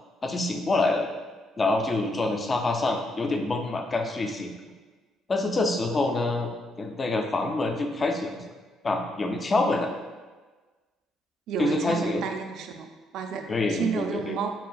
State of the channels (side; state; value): both; normal; correlation 0.77